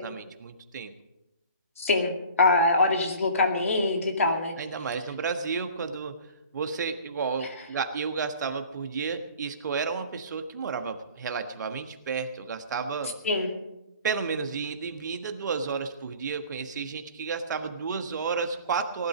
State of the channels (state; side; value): inverted; both; correlation -0.46